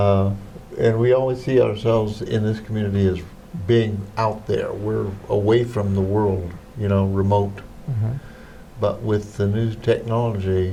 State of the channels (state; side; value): identical; both; correlation 1.00